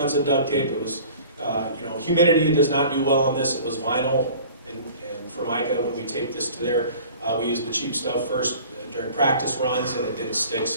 duct tape. It was, humidity does not do well on this. It was vinyl and Formica. When we taped this to there, we used the cheap stuff first during practice runs, and it didn't stick.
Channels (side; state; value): both; inverted; correlation -0.46